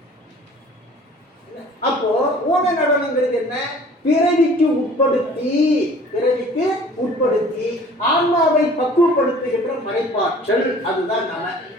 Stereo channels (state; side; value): normal; both; correlation 0.49